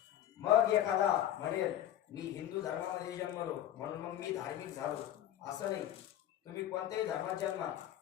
मग एखादा म्हणेल मी हिंदू धर्मामध्ये जन्मलो म्हणून मग मी धार्मिक झालो, असं नाही. तुम्ही कोणत्याही धर्मात जन्मा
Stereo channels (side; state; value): right; quieter; 11.8 dB